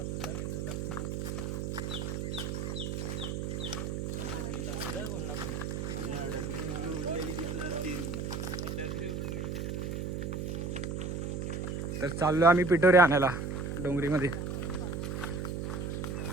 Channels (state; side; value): noise; right; hum, 2 dB below the sound